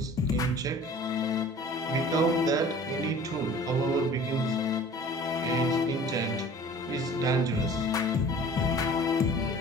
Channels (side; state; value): both; normal; correlation 0.46